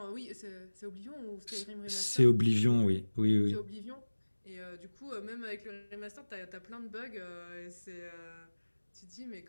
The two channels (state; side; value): inverted; both; correlation -1.00